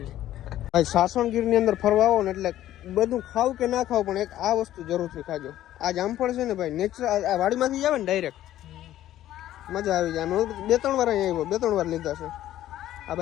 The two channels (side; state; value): right; quieter; 13.1 dB